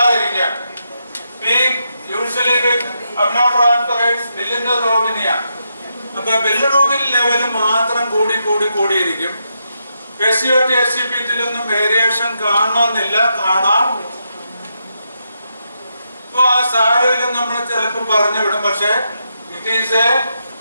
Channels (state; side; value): inverted; both; correlation -0.82